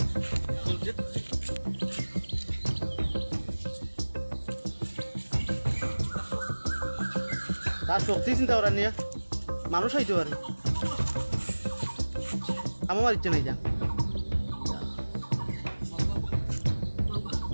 তার শক্তি চিন্তা করার নিয়ে মানুষ হইতে পারে। আমার ইচ্ছে নাই যা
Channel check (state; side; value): inverted; both; correlation -1.00